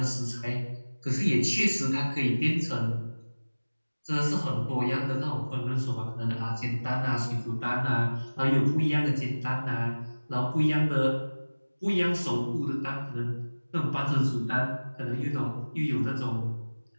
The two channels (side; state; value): both; inverted; correlation -1.00